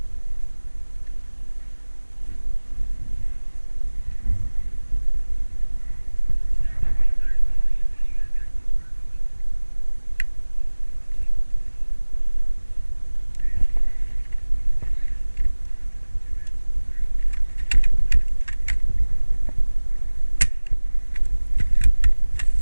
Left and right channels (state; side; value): inverted; both; correlation -1.00